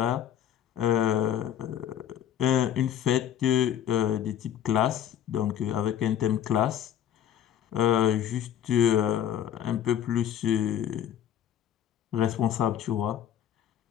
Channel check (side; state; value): right; quieter; 10.1 dB